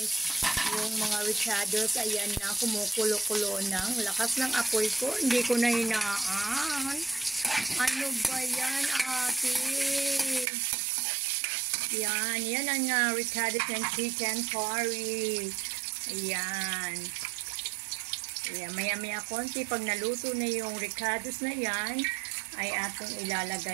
yung mga ricados. Ayan na, kumukulo-kulo ng lakas ng apoy ko. Hindi ko na hinaan. Ano ba yan, ate? Yan ang ricados ng chicken curry. Ayan. Ayan, maya-maya konti, pag naluto na yung ricados na yan, ay ating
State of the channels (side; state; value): left; drops out; at 10.5 s